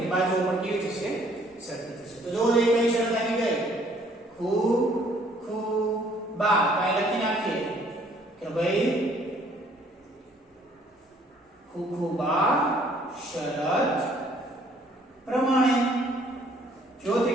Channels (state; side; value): normal; both; correlation 0.61